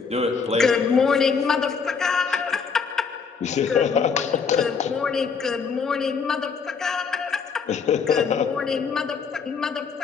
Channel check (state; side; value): quieter; right; 5.7 dB